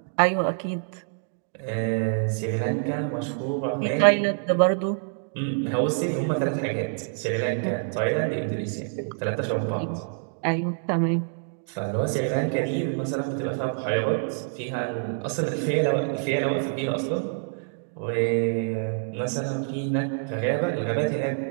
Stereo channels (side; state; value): left; silent; 61 dB below the other